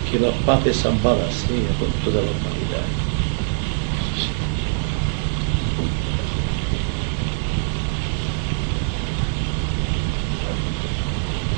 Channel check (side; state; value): left; silent; digital silence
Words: Que la paz es ambada sea con toda la humanidad.